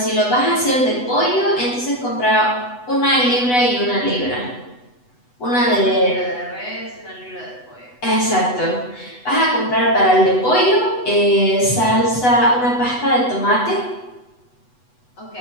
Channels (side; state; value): right; late; 8.0 ms